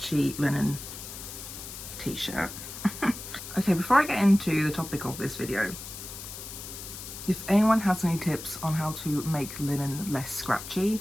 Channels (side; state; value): left; noise; hiss, 11 dB below the sound